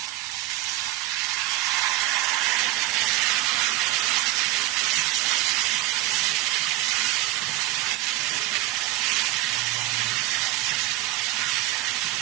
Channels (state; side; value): quieter; left; 16.0 dB